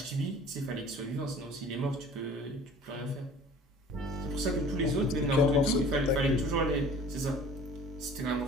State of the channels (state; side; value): normal; both; correlation 0.46